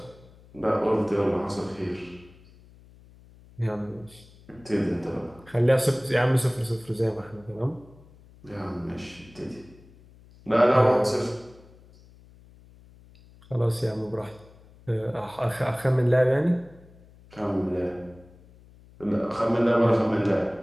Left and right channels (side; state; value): left; noise; hum, 25 dB below the sound